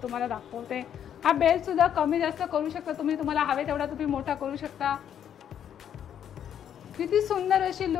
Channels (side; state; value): right; quieter; 9.4 dB